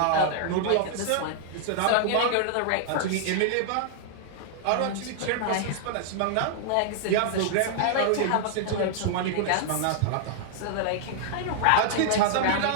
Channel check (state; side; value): different; both; correlation -0.01